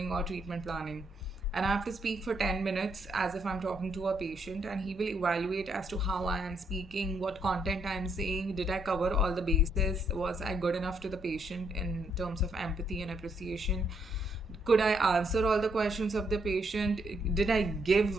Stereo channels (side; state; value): both; normal; correlation 0.74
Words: or treatment planning, and I have to speak for 10 minutes as if I'm talking to a patient, and he will evaluate as to how I am speaking, what content I am saying, did I cover all the bases, was I good enough to the patient in terms of empathy and appreciation, could I answer all the questions of the patient, did I